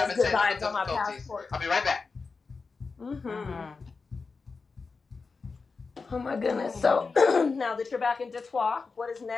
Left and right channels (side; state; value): right; quieter; 4.5 dB